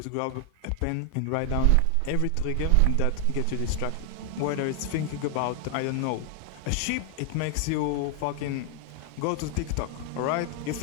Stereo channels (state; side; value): different; both; correlation 0.00